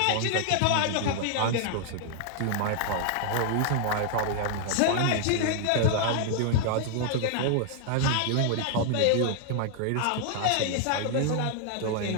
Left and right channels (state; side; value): different; both; correlation 0.00